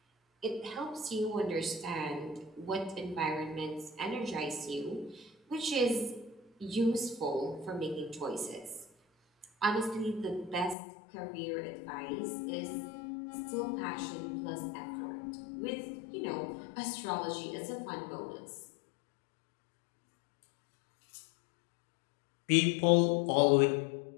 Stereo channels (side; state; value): right; drops out; at 10.8 s